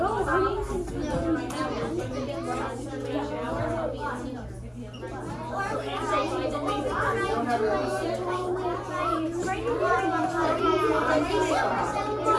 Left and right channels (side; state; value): both; identical; correlation 1.00